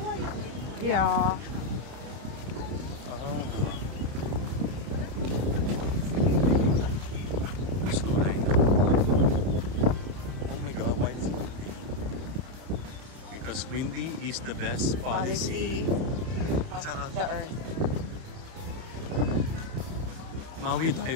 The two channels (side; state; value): left; late; 31 ms